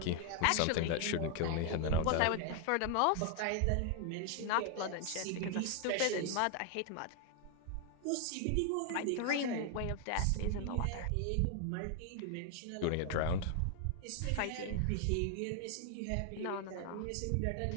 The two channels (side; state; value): both; different; correlation 0.00